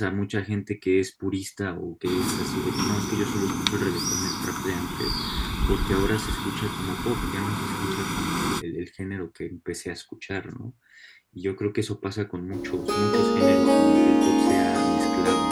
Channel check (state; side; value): identical; both; correlation 1.00